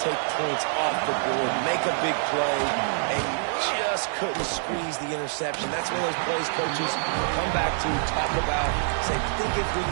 points off the board, make a big play, and you just couldn't squeeze the interception. That's one of those plays coaches come back to, talk about, say, think if we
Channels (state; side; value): silent; left; 55 dB below the other